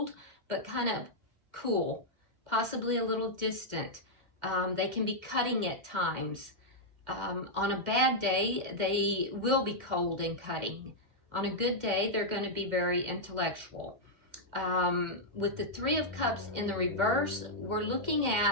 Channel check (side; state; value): left; late; 2.1 ms